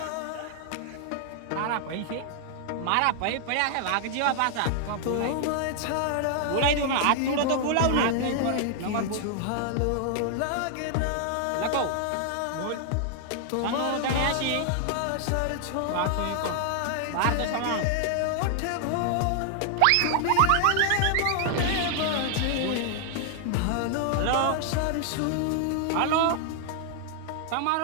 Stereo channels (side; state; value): both; different; correlation 0.00